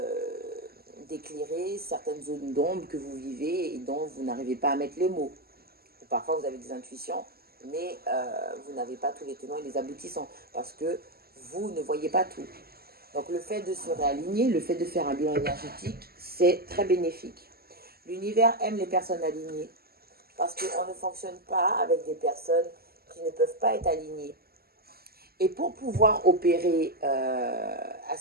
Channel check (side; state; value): left; late; 0.45 ms